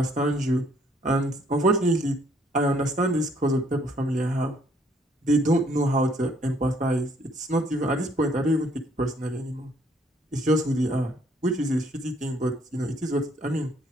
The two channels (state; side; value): normal; both; correlation 0.65